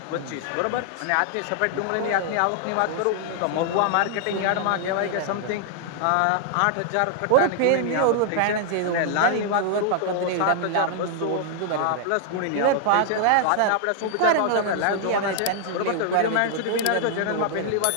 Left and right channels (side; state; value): both; different; correlation -0.01